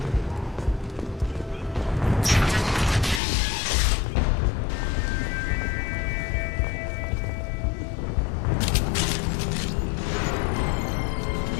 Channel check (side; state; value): right; drops out; at 3.2 s